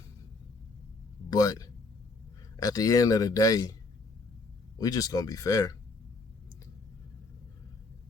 But at the end of the day, we just going to be fair.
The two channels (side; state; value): right; quieter; 3.4 dB